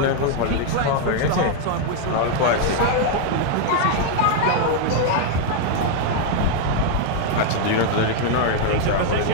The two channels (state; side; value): different; both; correlation 0.00